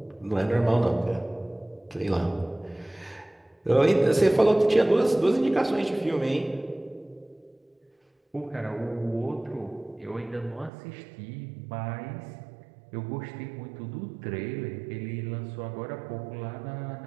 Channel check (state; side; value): drops out; left; at 10.7 s